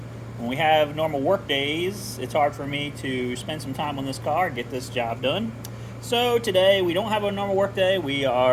when we have normal work days, it's hard for me to spend some time on this car, get this job done. So today we don't have a normal work day. We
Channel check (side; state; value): both; identical; correlation 1.00